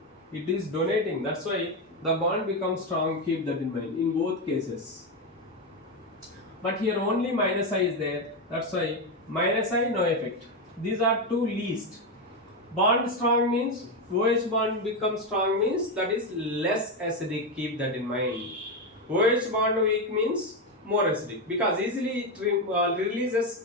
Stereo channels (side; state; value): both; normal; correlation 0.10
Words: It is donating. That's why the bond becomes strong. Keep that in mind in both cases. But here only minus I is there. That's why minus I, no effect. These are two least. Bond strong means OH bond becomes strong means that is less acidic. Keep that in mind. OH bond weak means more acidic, because easily it